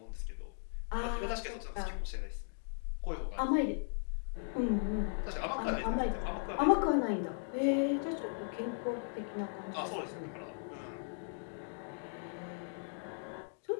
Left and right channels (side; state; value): right; silent; digital silence